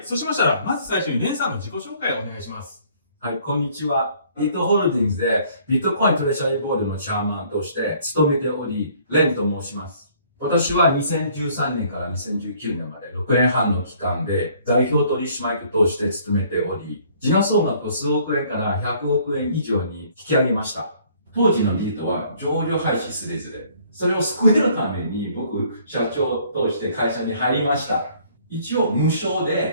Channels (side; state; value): both; inverted; correlation -0.59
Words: そうしましたらまず最初にレンさんの自己紹介をお願いします。はい、こんにちは。ビットホールディングスでビットコイントレジャリーボードのチャーマンとして務めており、レンと申します。私は2013年から2019年まで6年半の期間で代表取締役として務めており、時価総額を数億円から100億円以上に引き上げました。当時のビートは上場廃止すれずれ。それを救えるために僕、社長として会社に入りました。一応無償